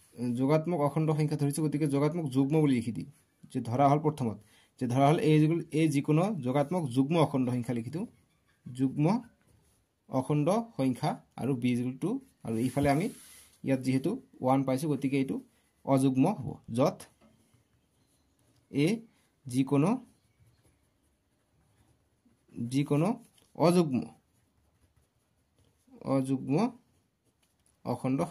যোগাত্মক অখণ্ড সংখ্যা ধৰিছো গতিকে যোগাত্মক যুগ্ম বুলি লিখি দিম যে ধৰা হল প্ৰথমত যে ধৰা হল a যিকোনো যোগাত্মক যুগ্ম অখণ্ড সংখ্যা লিখি দিও যুগ্ম অখণ্ড সংখ্যা আৰু b = 2 আৰু ইফালে আমি ইয়াত যেহেতু 1 পাইছো গতিকে এইটো অযুগ্ম হ'ব যত a যিকোনো অযুগ্ম অখণ্ড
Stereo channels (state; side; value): identical; both; correlation 1.00